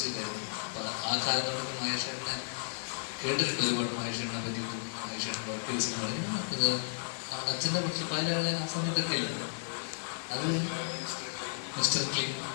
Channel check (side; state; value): right; silent; digital silence